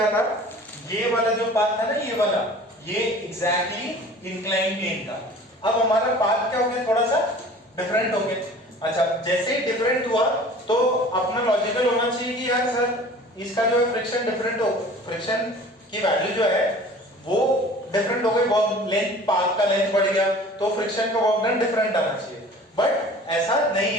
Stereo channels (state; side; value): normal; both; correlation 0.45